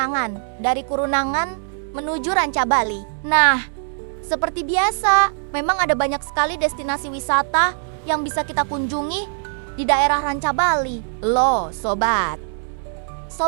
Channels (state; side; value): silent; left; digital silence